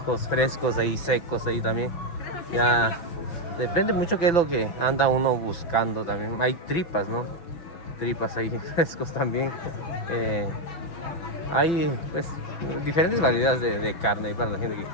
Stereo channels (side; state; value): right; late; 6.1 ms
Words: frescos, ahí secos, ahí también. Ya depende mucho qué es lo que anda uno buscando también. Hay tripas, ¿no? Tripas ahí frescos también. Hay pues diferentes variedades de carne para la gente que